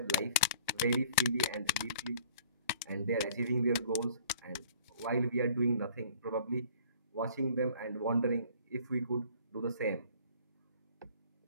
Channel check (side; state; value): both; inverted; correlation -0.52